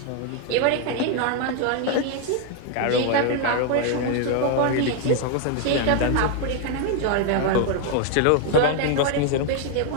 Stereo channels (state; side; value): different; both; correlation 0.00